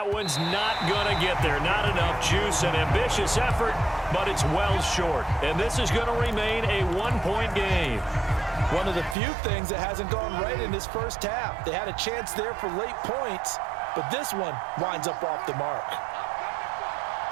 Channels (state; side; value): drops out; left; at 9.2 s